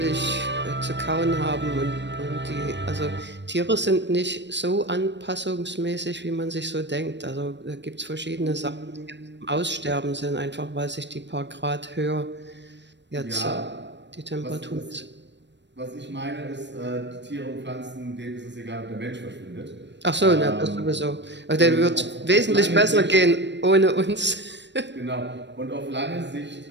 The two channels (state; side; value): late; left; 0.52 ms